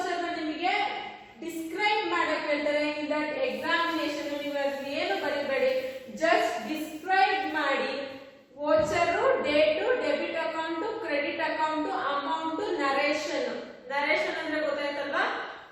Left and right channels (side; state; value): both; identical; correlation 1.00